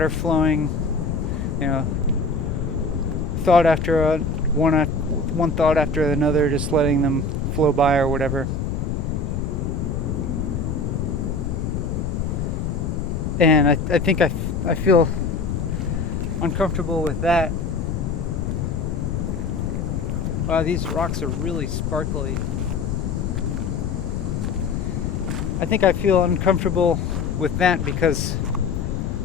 flowing, you know, thought after one thought after another, just letting them flow by or whatever. And I think I feel uncomfortable with that. Wow, these rocks are really sparkly. I think I feel uncomfortable with that because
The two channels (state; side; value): noise; left; rumble, 1 dB below the sound